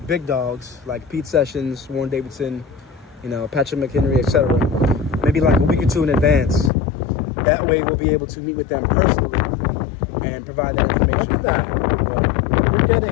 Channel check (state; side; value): drops out; right; at 6.7 s